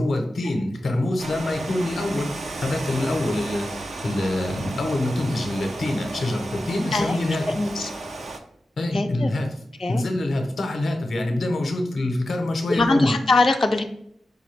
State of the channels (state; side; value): normal; both; correlation 0.92